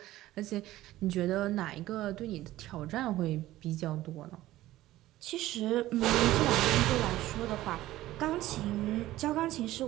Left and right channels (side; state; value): left; quieter; 15.7 dB